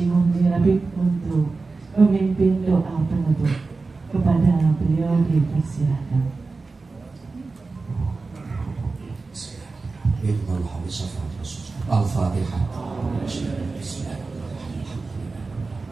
Muhyiddin untuk memimpin doa penutup. Kepada beliau dipersilahkan. Al-Fatihah.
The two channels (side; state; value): left; quieter; 3.9 dB